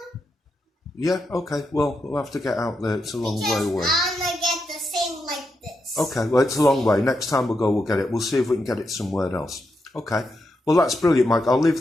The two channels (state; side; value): normal; both; correlation 0.84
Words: Yeah. Okay. Well, we'll have to get out there. It's a long way Because away. I'm gonna get the same like this. Okay. Well, it's a long way. Next time we'll go, we'll get it. We'll see if we can get it somewhere else. Okay. Well, that's brilliant, Mike. I'll leave